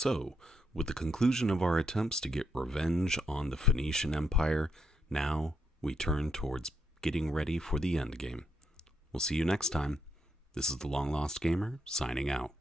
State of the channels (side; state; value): both; normal; correlation 0.77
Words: with the conclusion of our attempts to get revenge on the Phoenician Empire, now we turn towards getting ready for the endgame. We'll see you next time. This is the Long Lost Gamer, signing out.